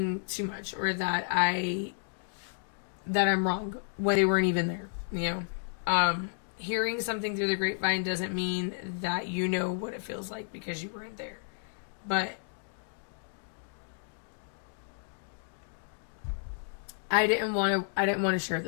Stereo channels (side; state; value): right; silent; digital silence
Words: too much, or that I'm wrong when they weren't even there, you know. Hearing something through the grapevine doesn't mean that you know what it feels like because you weren't there. But I didn't want to share